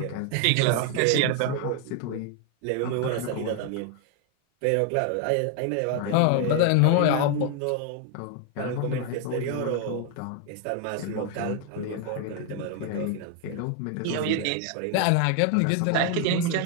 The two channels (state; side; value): different; both; correlation 0.00